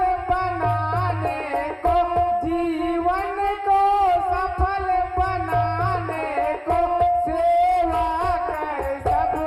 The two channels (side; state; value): both; identical; correlation 1.00